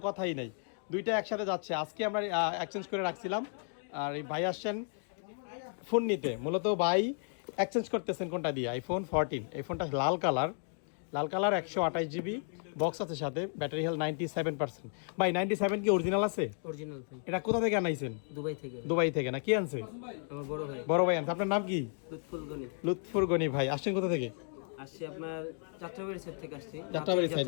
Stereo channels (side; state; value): right; silent; 55 dB below the other